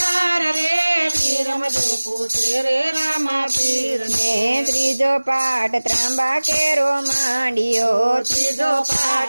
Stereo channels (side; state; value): both; inverted; correlation -1.00